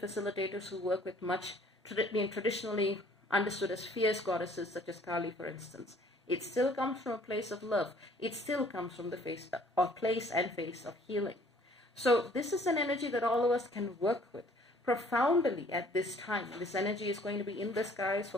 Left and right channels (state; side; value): normal; both; correlation 0.57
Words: who work with much traditionally understood as fierce goddesses, such as Kali, for instance. It still comes from a place of love. It still comes from the place and face of healing. So this is an energy that all of us can work with profoundly at this time. This energy is going to be in the skies for